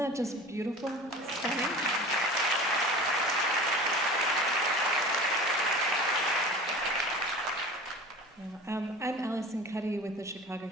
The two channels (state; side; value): normal; both; correlation 0.37